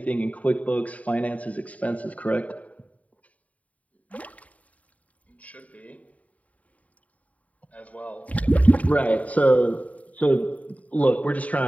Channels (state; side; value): late; right; 0.069 ms